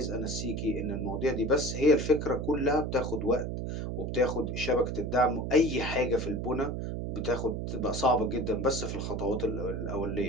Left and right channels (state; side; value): noise; right; hum, 3 dB below the sound